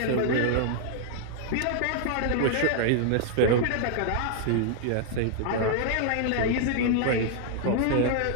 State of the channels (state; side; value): different; both; correlation 0.00